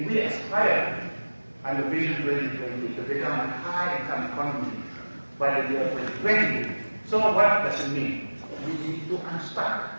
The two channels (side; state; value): both; inverted; correlation -1.00